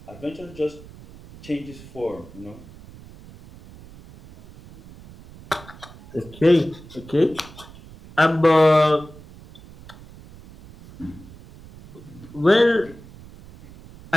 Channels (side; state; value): right; noise; rumble, 19 dB below the sound